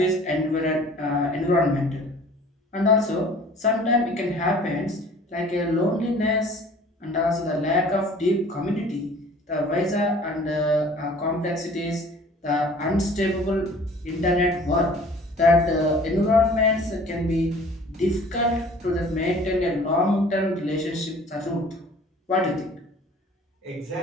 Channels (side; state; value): both; normal; correlation 0.49